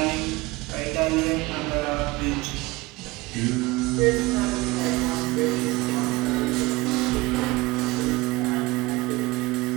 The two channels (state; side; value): quieter; left; 21.4 dB